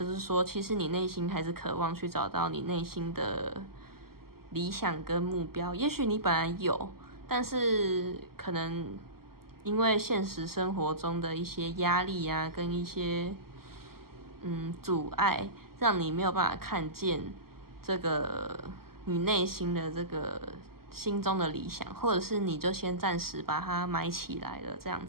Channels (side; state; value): left; late; 0.93 ms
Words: 是说，其实你内心还是渴望去找到你内心的理想跟目标，也许你本来有，但是可能因为现实生活中的一些压力啊，跟一些阻碍，让你没有办法看见这个你内心的这个心中的理想，或者是你就先暂时把它埋起来了这样